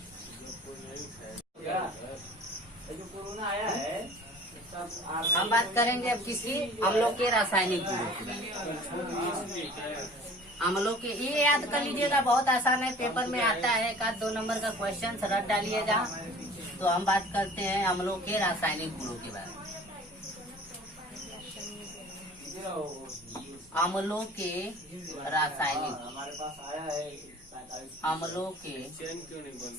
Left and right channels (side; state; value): both; normal; correlation 0.46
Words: हम बात करेंगे अब किसी अम्लों के रासायनिक गुणों की। अम्लों के ये याद कर लीजिएगा, बहुत आसान है, पेपर में आता है। एक आध 2 नंबर का क्वेश्चन रट डालिएगा। तो हम बात करते हैं अम्लों के रासायनिक गुणों के बारे में। अम्लों के रासायनिक अम्लों के